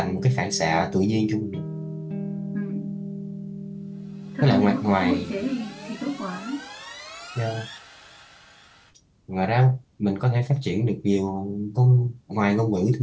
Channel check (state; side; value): identical; both; correlation 1.00